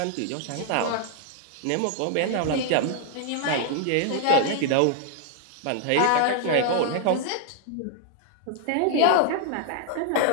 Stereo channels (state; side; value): different; both; correlation 0.00